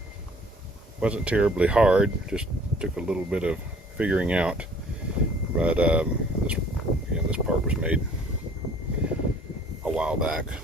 wasn't terribly hard, just took a little bit of figuring out, but this part was made a while back,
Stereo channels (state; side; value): normal; both; correlation 0.54